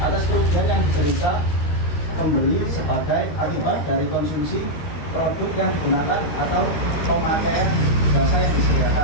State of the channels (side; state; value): right; late; 13 ms